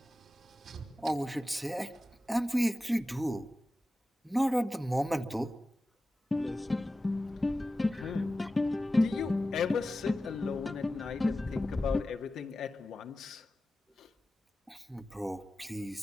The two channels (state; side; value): normal; both; correlation 0.94